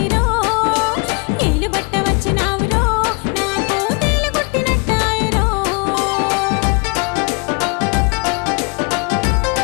ఏలు బట్ట వచ్చినావురో నాకు తేలు కొట్టినట్టాయరో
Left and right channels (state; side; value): quieter; right; 32.5 dB